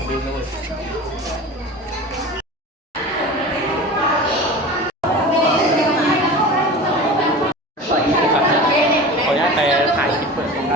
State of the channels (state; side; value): normal; both; correlation 0.34